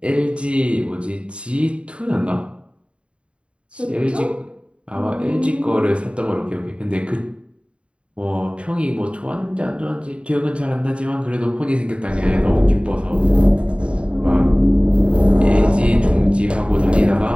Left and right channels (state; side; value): late; left; 0.058 ms